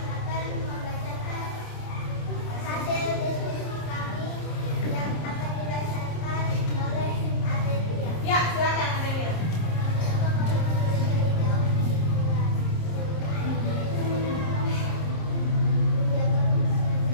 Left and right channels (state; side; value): late; right; 26 ms